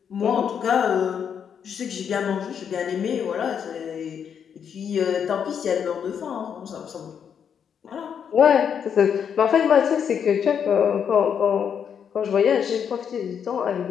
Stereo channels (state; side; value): quieter; right; 7.7 dB